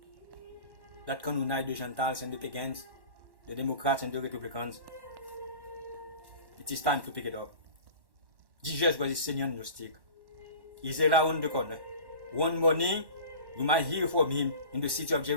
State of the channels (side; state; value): left; late; 1.1 ms